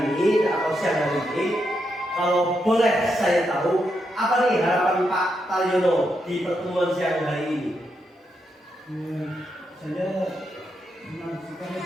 ini atau siang hari ini, kalau boleh saya tahu apa nih harapan Pak Taryono di pertemuan siang hari ini? Saya senang sekali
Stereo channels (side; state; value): both; normal; correlation 0.82